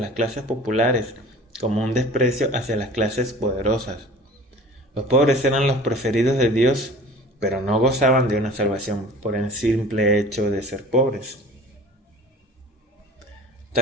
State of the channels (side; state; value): both; normal; correlation 0.43